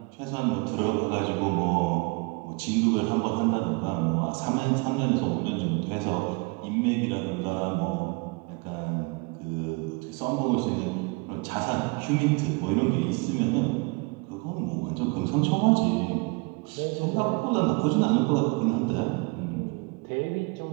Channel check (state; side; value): quieter; left; 29.2 dB